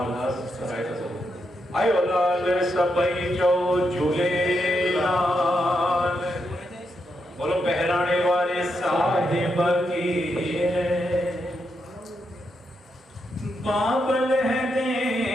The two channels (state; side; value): normal; both; correlation 0.82